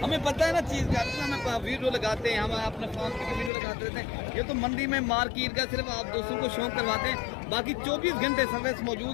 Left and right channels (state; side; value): drops out; right; at 3.5 s